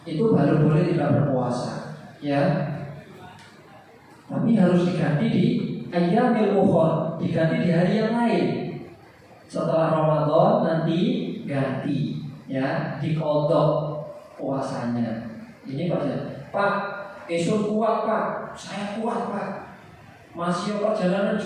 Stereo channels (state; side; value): identical; both; correlation 1.00